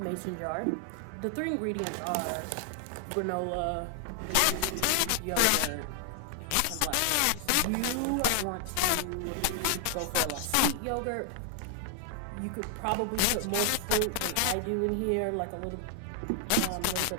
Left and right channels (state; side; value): different; both; correlation 0.00